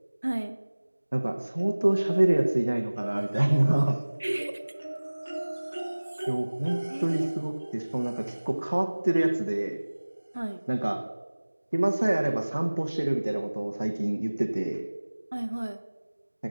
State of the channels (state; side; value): inverted; both; correlation -1.00